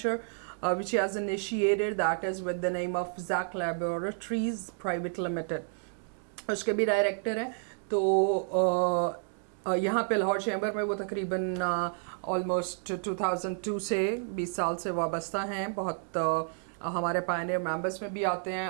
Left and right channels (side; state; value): left; silent; 57 dB below the other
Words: which he has initiated that is with the name of Zach Laboratories Private Limited, उसके भी डायरेक्टर हैं। तो यहाँ पे लाहौर चैम्बर में वो तकरीबन ऑलमोस्ट 2002 से 20 साल से वाबस्ता हैं। बहुत हमारे पायनियर मेंबर्स में भी आते हैं